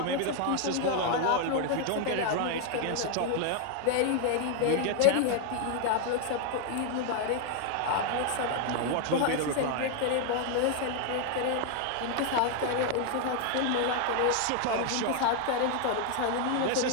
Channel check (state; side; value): different; both; correlation 0.00